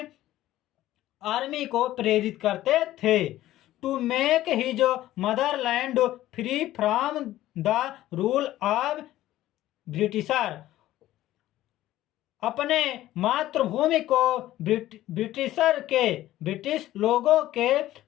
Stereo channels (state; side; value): quieter; right; 14.6 dB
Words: आर्मी को प्रेरित करते थे। To make his motherland free from the rule of Britisher. अपने मातृभूमि को ब्रिटिश लोगों के